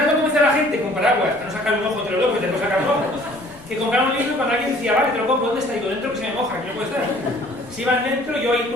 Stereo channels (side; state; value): left; noise; rumble, 25 dB below the sound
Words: convencer a la gente con paraguas, para no sacar un ojo entre los dos, porque te puedo sacar un ojo, que compraron un libro cuando alguien decía, vale, te lo compro, ¿dónde está? Digo, dentro que se me moja, que no puede estar. Si iban dentro, yo ahí